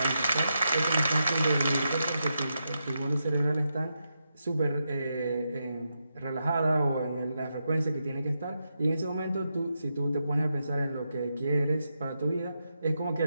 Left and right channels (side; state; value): both; inverted; correlation -0.85